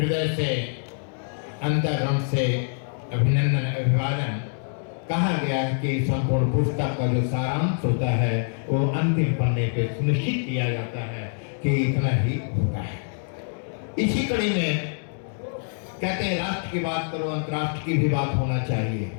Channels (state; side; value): silent; right; 62 dB below the other